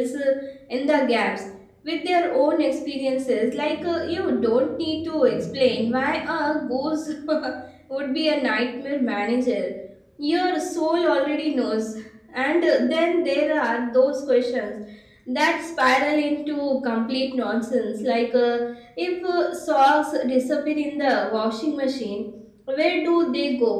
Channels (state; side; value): identical; both; correlation 1.00